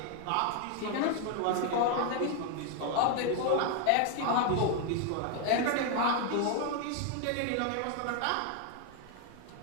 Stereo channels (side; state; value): both; different; correlation 0.01